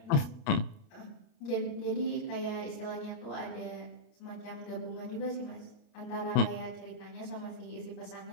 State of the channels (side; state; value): right; late; 29 ms